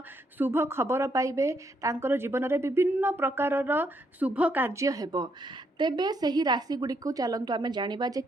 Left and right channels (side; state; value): both; normal; correlation 0.75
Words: शुभ खबर पाइबे, तांकर जीवन में विभिन्न प्रकारर शुभ कार्य हेबो। तेबे सही राशि गुडी को चलंतु आमे जानिबा जे